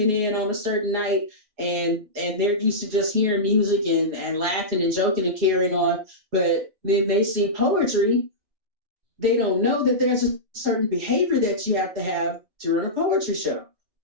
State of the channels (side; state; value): left; late; 4.8 ms